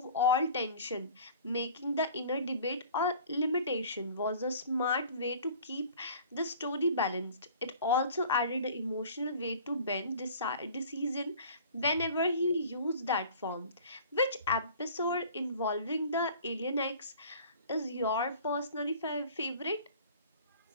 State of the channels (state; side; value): inverted; both; correlation -0.46